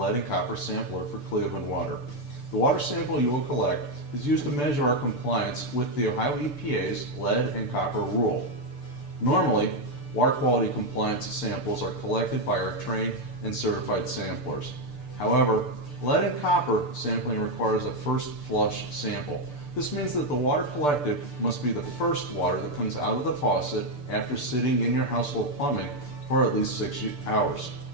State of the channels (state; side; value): late; right; 6.8 ms